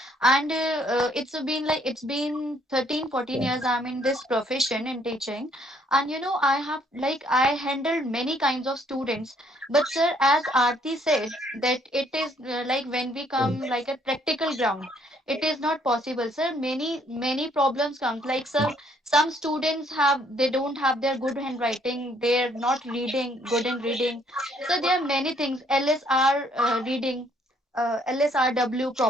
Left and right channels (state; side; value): normal; both; correlation 0.66